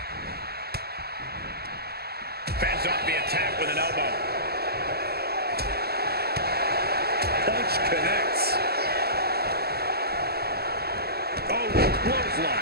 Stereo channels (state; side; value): late; left; 0.46 ms